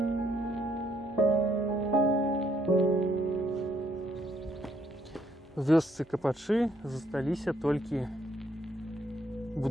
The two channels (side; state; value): both; normal; correlation 0.70